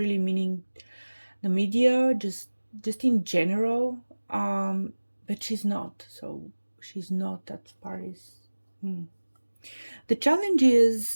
meaning the media, just in general. But she's not. So she's not. That part is. The challenge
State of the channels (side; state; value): both; inverted; correlation -1.00